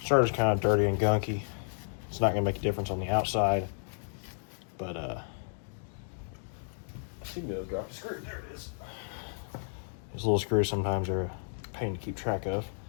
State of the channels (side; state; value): right; silent; digital silence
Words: starter's kind of dirty and gunky. It's not going to make a difference on the outside, but I seem to have dropped a screw. There it is. These little screws sometimes are a pain to keep track of.